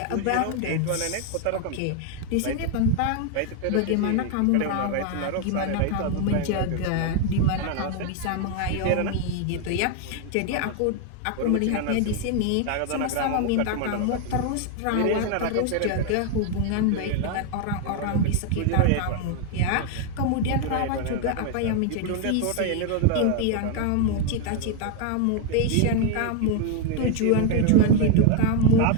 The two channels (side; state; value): both; different; correlation 0.01